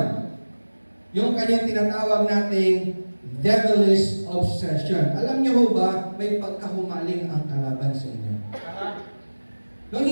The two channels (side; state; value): both; inverted; correlation -1.00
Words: yung kanyang tinatawag nating devilish obsession. Alam niyo ho ba, may pagkahumaling ang kalaban sa inyo. Nung